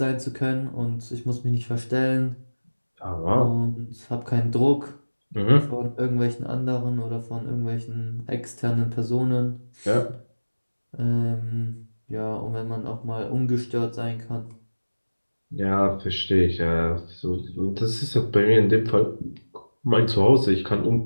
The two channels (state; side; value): inverted; both; correlation -1.00